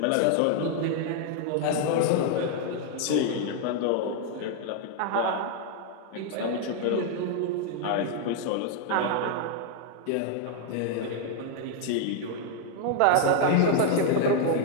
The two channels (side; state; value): both; different; correlation 0.00